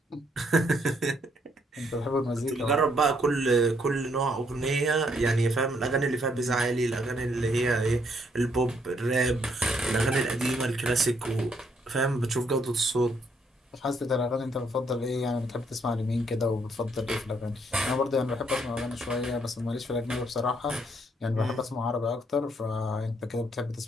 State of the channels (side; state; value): both; normal; correlation 0.71